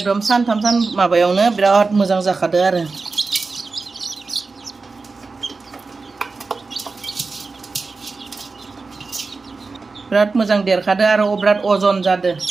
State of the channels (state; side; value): quieter; left; 4.1 dB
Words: सानथाम माबायावनो बिराद मोजां जाखादो आरो बिराद मोजां देरखादो आरो बिराद अजन जादो